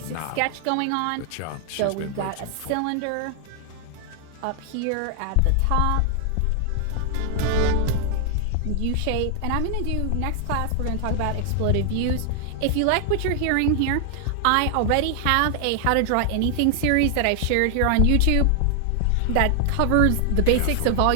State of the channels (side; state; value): both; different; correlation 0.00